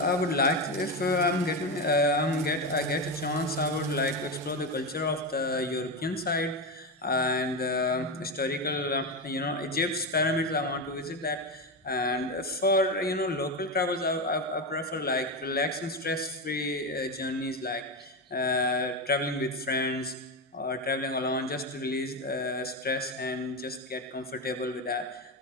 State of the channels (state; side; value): normal; both; correlation 0.14